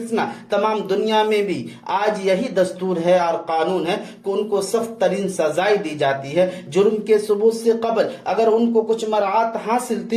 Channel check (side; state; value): both; identical; correlation 1.00